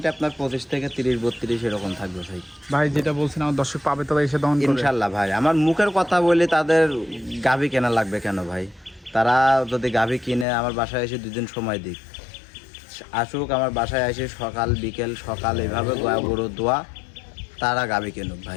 আপনার 25 থেকে 30-32 এরকম থাকবে ভাই। ভাই যেটা বলছেন আমার দর্শক পাবে তো এসে দহন করবে ইনশাআল্লাহ ভাই। আমার মুখের কথা বলি, তাদের গাভী কেনা লাগবে কেন ভাই? তারা যদি গাভী কিনে আমার বাসায় এসে 2 দিন সময় দিক, আসুক আমার বাসায় এসে সকাল বিকেল সকাল এভাবে গরু দোয়া তারা গাভী কিনুক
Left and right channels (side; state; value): right; drops out; at 10.5 s